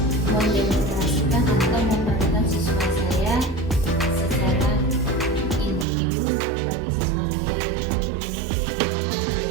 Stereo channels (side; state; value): left; drops out; at 5.9 s